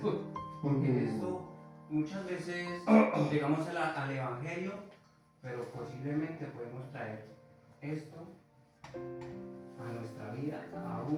porque esto muchas veces llegamos al Evangelio, pero posiblemente podemos traer esto a nuestra vida,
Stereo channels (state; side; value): identical; both; correlation 1.00